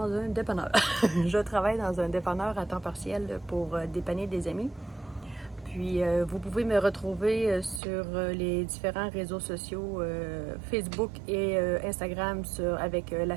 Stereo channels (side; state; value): left; drops out; at 7.8 s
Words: un dépanneur. Je travaille dans un dépanneur à temps partiel pour dépanner des amis. Puis vous pouvez me retrouver sur les différents réseaux sociaux, Facebook et Instagram avec la